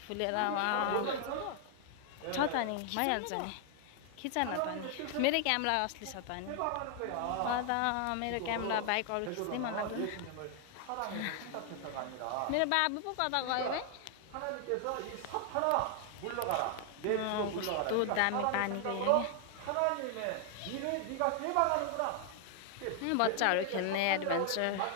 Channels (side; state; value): both; different; correlation 0.00